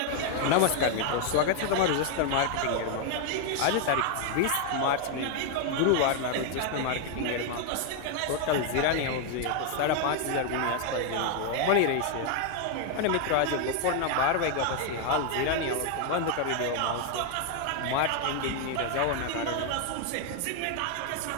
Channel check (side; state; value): both; different; correlation 0.01